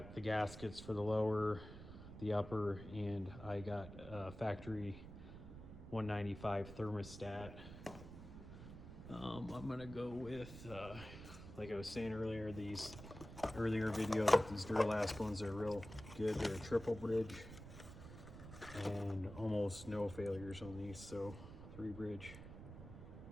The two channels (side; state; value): right; noise; rumble, 12 dB below the sound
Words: the gaskets for the lower, the upper, and I got a factory 195 thermostat. I'm gonna go with, like I was saying earlier, these earlier video, that these Duralast ones are real good. They're a triple bridge and almost no failures on these, so 3 bridge,